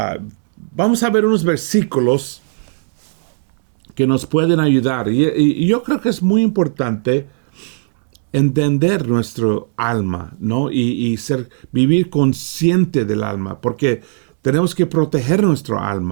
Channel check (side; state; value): left; silent; digital silence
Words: vamos a ver unos versículos que nos pueden ayudar. Y yo creo que es muy importante entender nuestro alma, ¿no? Y vivir consciente del alma, porque tenemos que proteger nuestro